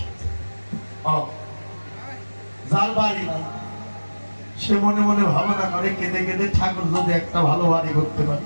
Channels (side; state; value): both; inverted; correlation -1.00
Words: যার বাড়ি নাই সে মনে মনে ভাবনা করে কেঁদে কেঁদে, ঠাকুর যদি একটা ভালো বাড়ি করতে পারে।